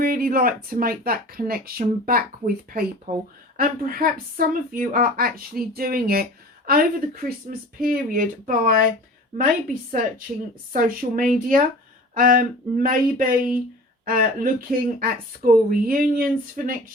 like to make that connection back with people. And perhaps some of you are actually doing it over the Christmas period by maybe searching social media, maybe looking at school reunions for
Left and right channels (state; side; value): normal; both; correlation 0.40